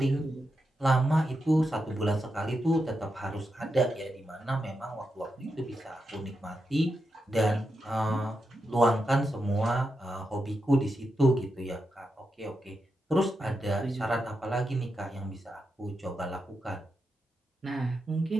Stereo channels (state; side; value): normal; both; correlation 0.86